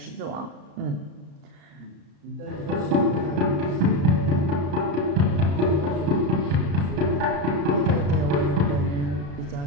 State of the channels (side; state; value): left; late; 34 ms